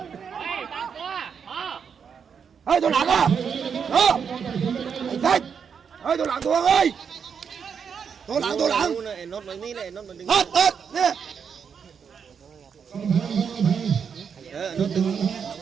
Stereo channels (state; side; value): quieter; left; 6.8 dB